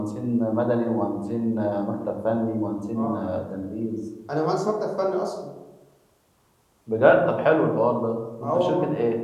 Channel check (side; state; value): both; identical; correlation 1.00